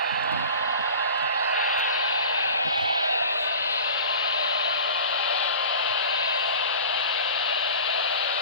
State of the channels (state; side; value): inverted; both; correlation -0.38